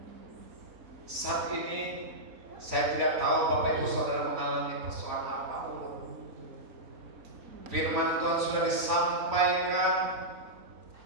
Saat ini saya tidak tahu Bapak Ibu Saudara mengalami persoalan apapun. Firman Tuhan sudah disampaikan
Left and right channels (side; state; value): left; late; 4.4 ms